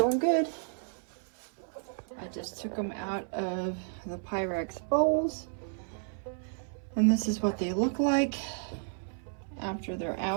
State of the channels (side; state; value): left; silent; 56 dB below the other